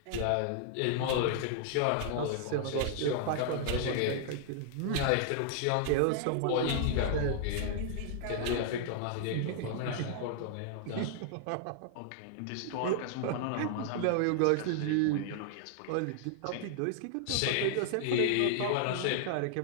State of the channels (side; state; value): both; different; correlation -0.01